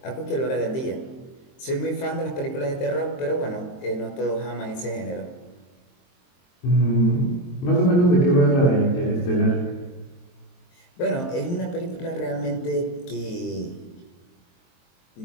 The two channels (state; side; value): late; right; 23 ms